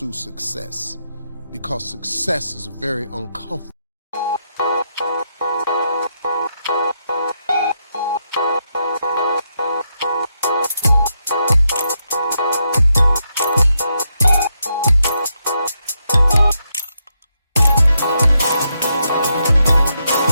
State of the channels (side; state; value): both; inverted; correlation -0.82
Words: success, because success is very uncomfortable.